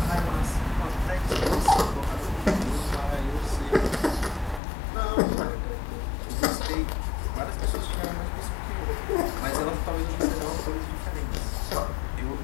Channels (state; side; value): drops out; right; at 4.6 s